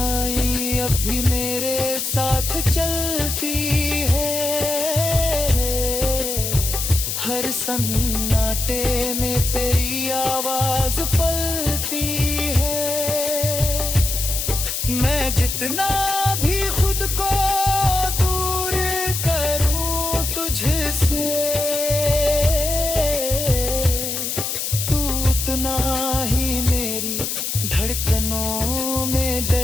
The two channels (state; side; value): noise; left; hiss, 2 dB below the sound